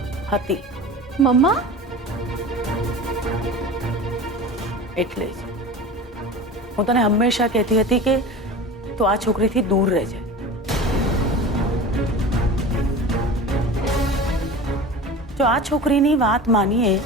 હતી. મમ્મા, એટલે જ હું તને હંમેશા કહેતી હતી કે તું આ છોકરીથી દૂર રહેજે. જો આ છોકરીની વાત માનીએ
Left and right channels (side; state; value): both; normal; correlation 0.34